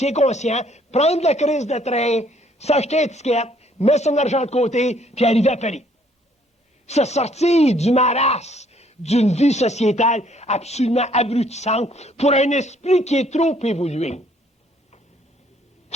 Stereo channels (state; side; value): normal; both; correlation 0.64